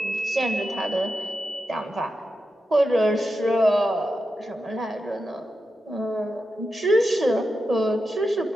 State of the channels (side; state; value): both; normal; correlation 0.89